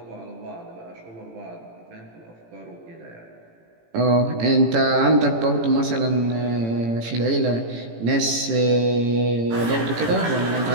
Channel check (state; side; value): late; left; 18 ms